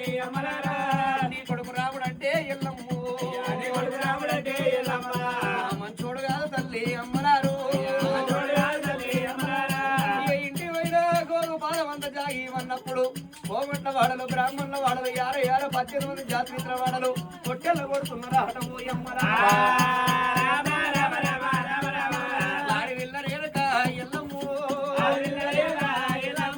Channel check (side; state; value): both; identical; correlation 1.00